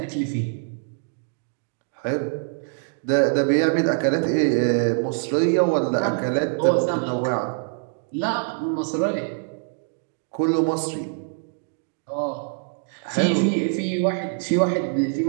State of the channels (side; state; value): left; silent; digital silence